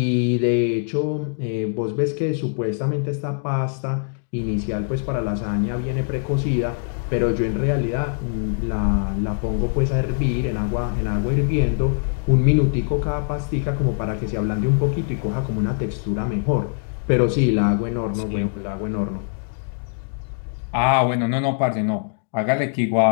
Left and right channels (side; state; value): right; silent; digital silence